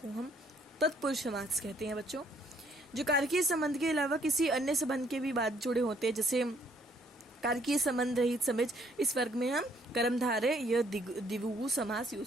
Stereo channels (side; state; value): both; normal; correlation 0.65